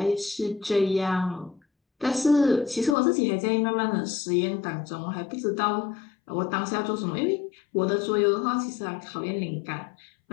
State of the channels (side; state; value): right; drops out; at 3.0 s